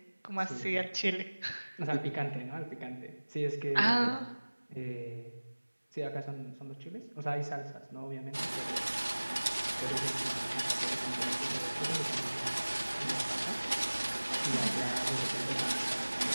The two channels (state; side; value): inverted; both; correlation -1.00